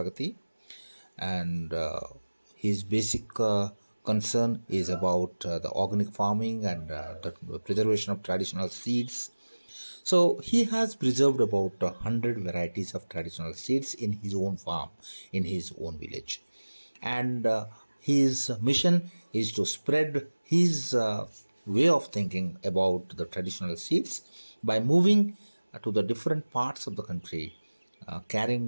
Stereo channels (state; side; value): inverted; both; correlation -1.00